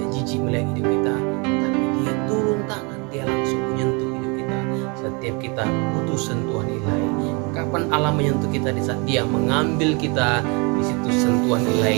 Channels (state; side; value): quieter; left; 31.1 dB